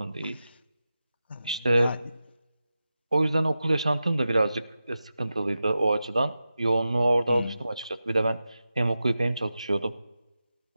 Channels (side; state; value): both; inverted; correlation -0.92